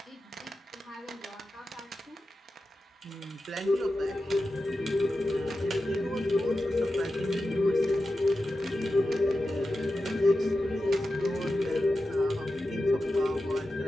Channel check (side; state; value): both; normal; correlation 0.92